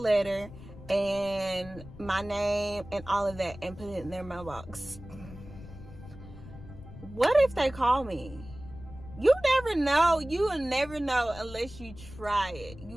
and my name and all of that, and put it in their mailbox. What if they call me? You never know. You will never know unless you try it.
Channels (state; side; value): noise; left; rumble, 16 dB below the sound